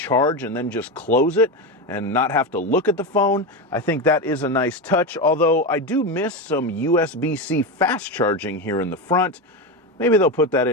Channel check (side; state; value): both; normal; correlation 0.16